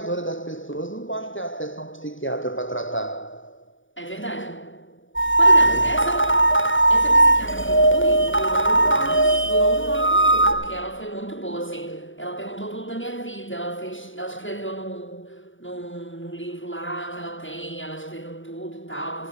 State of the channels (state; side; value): late; right; 0.57 ms